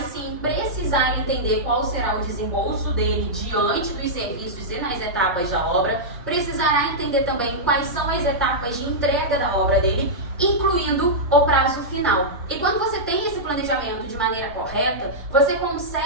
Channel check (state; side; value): normal; both; correlation -0.10